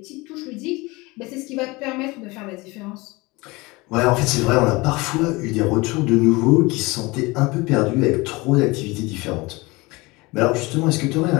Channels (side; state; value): right; quieter; 23.5 dB